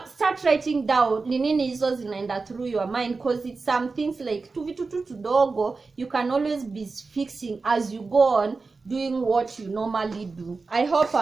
start writing down ni nini hizo zinaenda through your mind, because it's some things like tu vitu tu tudogo you can always be fixing as you go on doing what you normally do. I hope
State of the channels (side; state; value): left; quieter; 4.1 dB